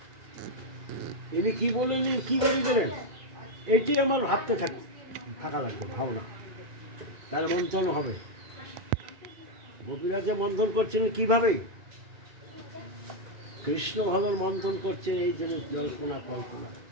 ইনি কি বললেন, কি বলে গেলেন, এটাই আমার ভাবতে থাকা লাগবে, ভাবনা, তাহলে মন্থন হবে। গোপীরা যে মন্থন করছেন কিভাবে, কৃষ্ণ ভালোর মন্থন করছেন, এই জন্য জল্পনা কল্পনা।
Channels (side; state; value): left; late; 2.2 ms